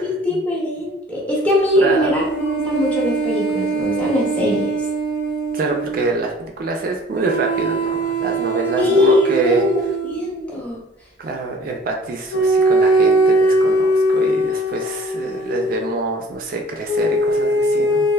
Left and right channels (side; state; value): both; normal; correlation 0.50